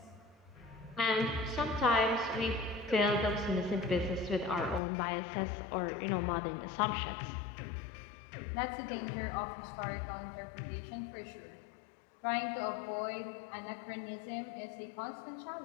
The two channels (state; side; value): drops out; right; at 4.8 s